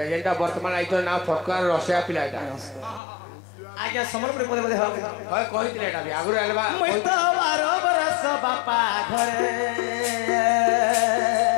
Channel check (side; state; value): right; drops out; at 3.0 s